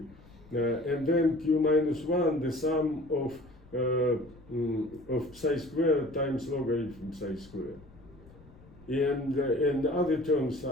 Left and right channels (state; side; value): noise; left; rumble, 23 dB below the sound